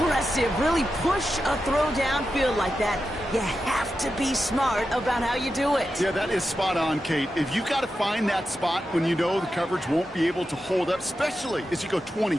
really push a throw downfield like that, you have to be smart about how you do it. Yeah, that is spot on, Kate. If you've got to find that spot when you know the coverage won't be able to hold up, especially as you go 20,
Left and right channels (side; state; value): both; normal; correlation 0.90